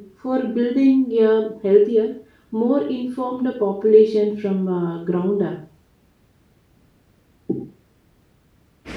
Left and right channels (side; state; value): both; identical; correlation 1.00